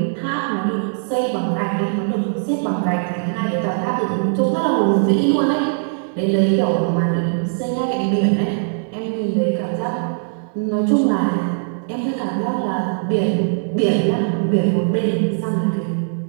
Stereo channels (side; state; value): left; silent; digital silence